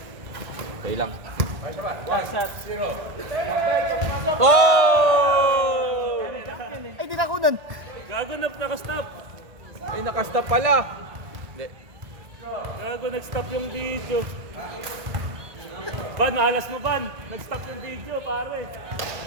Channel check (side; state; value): left; late; 1.5 ms